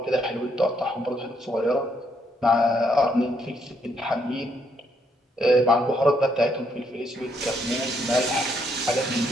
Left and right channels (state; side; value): normal; both; correlation 0.73